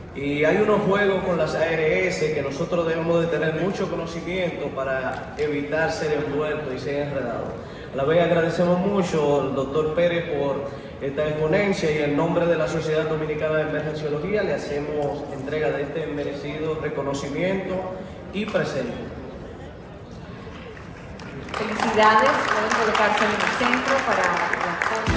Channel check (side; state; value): both; identical; correlation 1.00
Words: y hay unos juegos con las ARS que nosotros debemos de tener mucho conocimiento para evitar ser envueltos y ser enredados. A la vez agradecemos mucho al doctor Pérez por esta exponencia y en nombre de la Sociedad Dominicana de Emergenciología le hacemos entrega de este merecido reconocimiento y presente. Felicidades, pueden colocarse en el centro para la foto